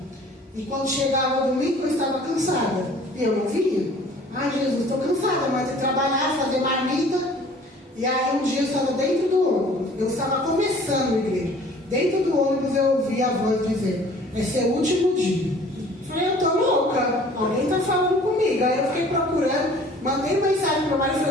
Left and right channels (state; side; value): normal; both; correlation 0.51